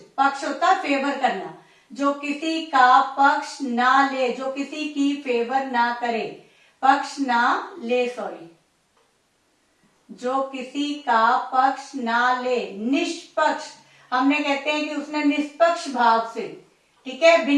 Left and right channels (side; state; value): both; identical; correlation 1.00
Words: पक्ष होता है फेवर करना, जो किसी का पक्ष ना ले, जो किसी की फेवर ना करे, पक्ष ना ले, सॉरी, जो किसी का पक्ष ना ले, निष्पक्ष। हमने कहते हैं कि उसने निष्पक्ष भाव से, ठीक है,